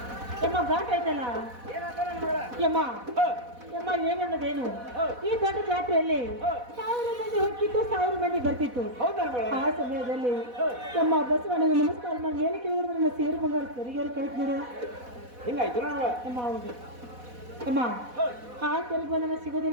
ಯಮ್ಮ ಘಾಟ್ ಆಯ್ತಲ್ಲ ಯಮ್ಮ ಯಮ್ಮ ಏನನ್ನೋದೇನು ಈ ದೊಡ್ಡ ಜಾತ್ರೆಯಲ್ಲಿ 1000 ಮಂದಿ ಹೋಗಿತ್ತು 1000 ಮಂದಿ ಬರ್ತಿತ್ತು ಆ ಸಮಯದಲ್ಲಿ ಯಮ್ಮ ಬಸವಣ್ಣಗೆ ನಮಸ್ಕಾರ ಮಾಡಿ ಏನು ಕೇಳಿದ್ರೆ ನನ್ನ ಸೇರು ಬಂಗಾರ ಸರಿಯಾಗಿ ಕಳಿಸ್ ನೋಡು ಹಿಂಗಾಯ್ತು ಯಮ್ಮ ಹೌದು ಯಮ್ಮ ಆ ಸರಿಗೆ ಬಂದ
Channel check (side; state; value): left; late; 4.1 ms